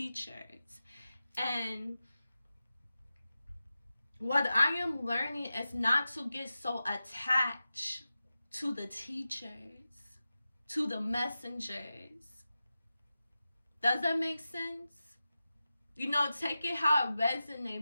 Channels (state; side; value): inverted; both; correlation -0.93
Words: And what I am learning is not to get so attached to the teachers, to the messengers. Does that make sense? You know, take it how it